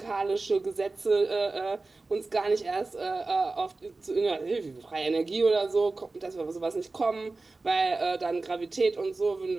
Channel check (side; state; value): left; quieter; 3.5 dB